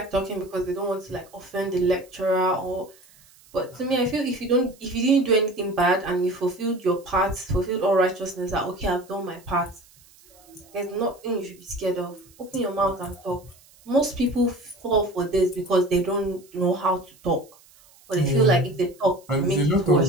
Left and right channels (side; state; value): right; noise; hiss, 27 dB below the sound